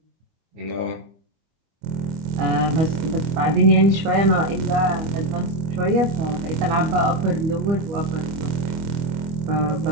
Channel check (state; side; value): late; left; 25 ms